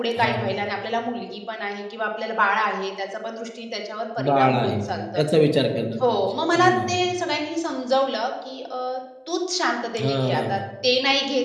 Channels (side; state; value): both; identical; correlation 1.00